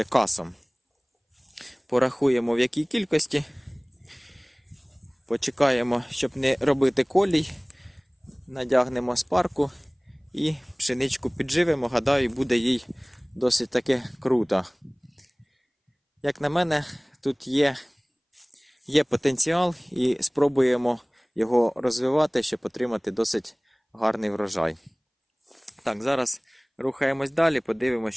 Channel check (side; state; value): both; identical; correlation 1.00